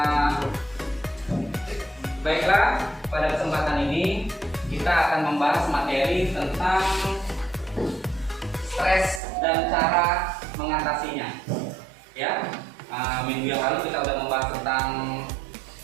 Baiklah, pada kesempatan ini kita akan membahas materi tentang stres dan cara mengatasinya. Ya, minggu yang lalu kita sudah membahas tentang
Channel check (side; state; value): left; drops out; at 9.2 s